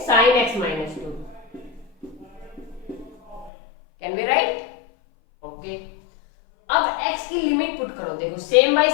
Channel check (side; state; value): right; drops out; at 3.5 s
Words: sin x minus 2। Can be right? Okay. अब x की लिमिट पुट करो, देखो सेम बाय